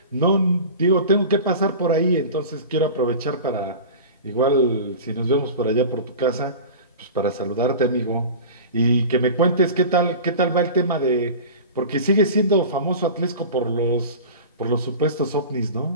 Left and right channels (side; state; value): both; inverted; correlation -0.34